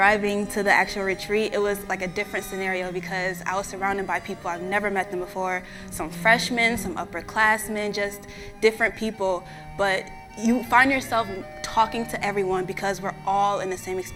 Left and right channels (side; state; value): both; identical; correlation 1.00